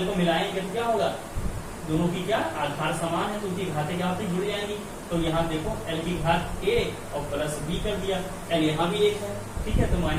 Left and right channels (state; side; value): identical; both; correlation 1.00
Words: को मिलाएंगे तो क्या होगा, दोनों की क्या आधार समान है तो उनकी घातें क्या होती जुड़ जाएंगी। तो यहाँ देखो एल की घात ए और प्लस बी कर दिया, एल यहाँ भी एक है, ठीक है, तो